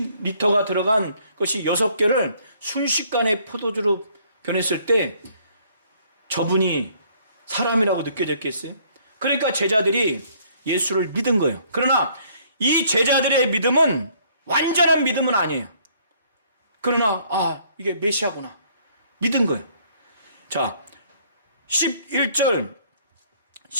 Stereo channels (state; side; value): inverted; both; correlation -0.62